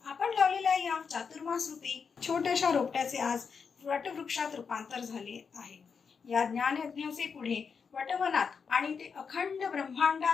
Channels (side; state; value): right; quieter; 5.9 dB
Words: आपण लावलेल्या या चातुर्मास रूपी छोट्याशा रोपट्याचे आज वटवृक्षात रूपांतर झाले आहे. या ज्ञानयज्ञाचे पुढे वटवनात आणि ते अखंड